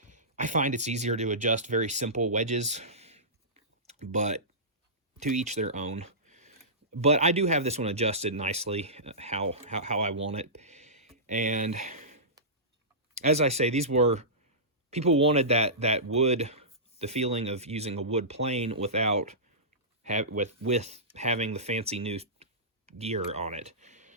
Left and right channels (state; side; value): normal; both; correlation -0.20